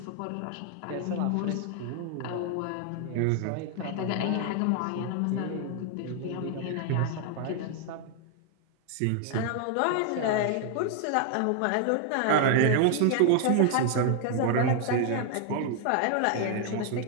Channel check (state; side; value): different; both; correlation 0.00